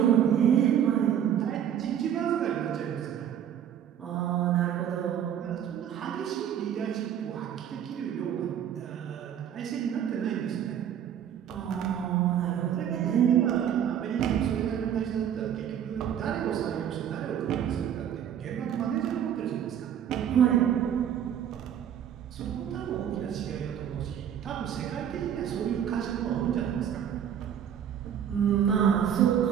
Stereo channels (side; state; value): left; quieter; 9.4 dB